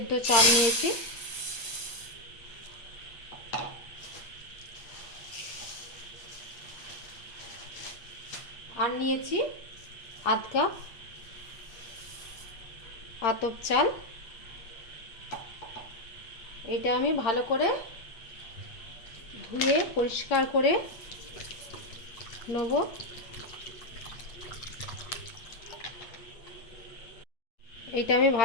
চাল নিয়েছি। আর নিয়েছি 1/2 কাপ আতপ চাল। এটা আমি ভালো করে ধুয়ে পরিষ্কার করে নেব। এটা আমি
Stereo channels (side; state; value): right; late; 8.3 ms